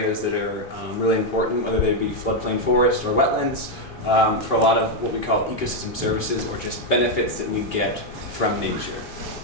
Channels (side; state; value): both; normal; correlation 0.02